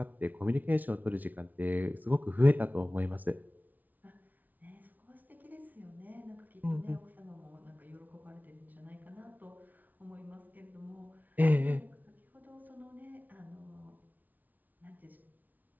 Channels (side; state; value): left; late; 0.079 ms